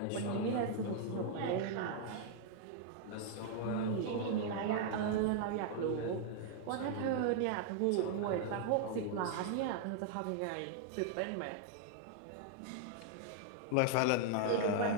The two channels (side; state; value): both; different; correlation -0.01